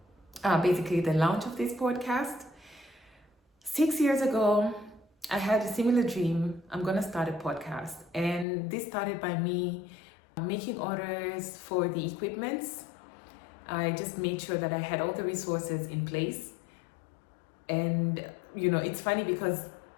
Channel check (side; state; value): right; drops out; at 8.5 s